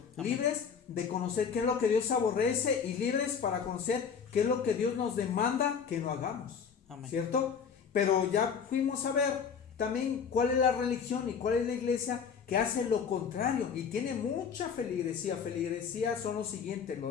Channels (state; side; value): quieter; right; 6.6 dB